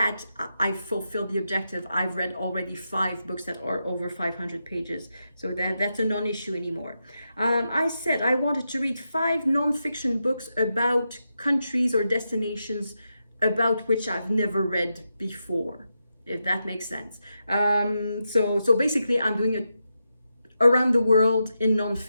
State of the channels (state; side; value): inverted; both; correlation -0.86